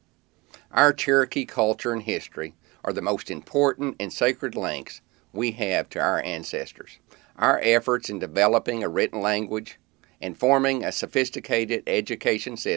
Our Cherokee culture and history are the most important and sacred links we have to our ancestors. Our efforts in developing a written language and forming a sophisticated education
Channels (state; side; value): quieter; left; 23.7 dB